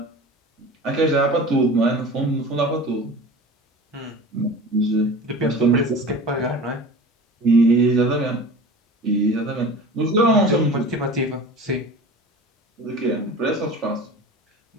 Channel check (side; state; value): both; normal; correlation 0.36